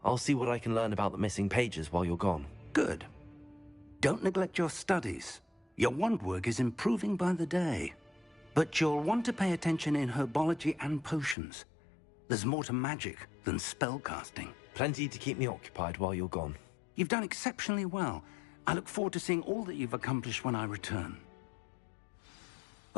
I'll see what I can learn about the missing pages while you're gone. Good. Don't neglect your studies. Your wand work is improving by the day. But you'll want to pay attention in herbology and potions. There's more to magic than spellcasting. Plenty to keep me occupied while you're gone. You've done exceptionally well. I look forward to seeing all that you've accomplished when I return.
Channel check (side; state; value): right; drops out; at 11.4 s